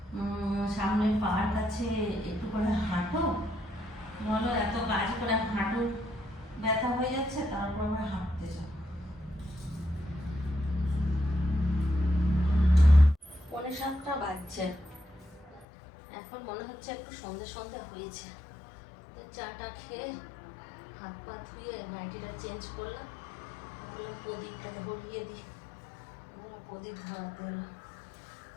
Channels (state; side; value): drops out; right; at 15.7 s